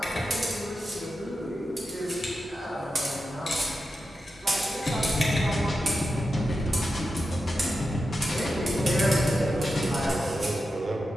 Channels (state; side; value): normal; both; correlation 0.90